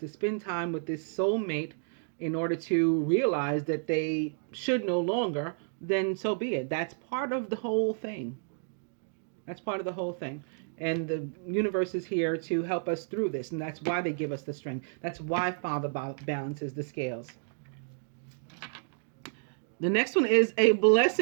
to spend time with this soulmate in order to realize that they should no longer, then so be it. That's part of the whole thing. That's part of the whole thing. And the universe is here to help us through this. And that's why they give us the strength. That's why Father balances the scales. The next one is a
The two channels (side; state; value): left; silent; digital silence